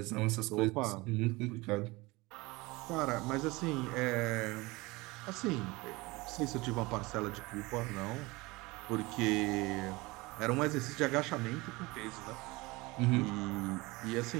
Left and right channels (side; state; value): left; quieter; 22.8 dB